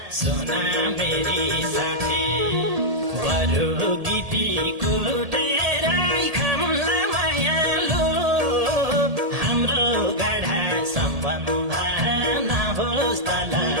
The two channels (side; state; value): left; late; 1.8 ms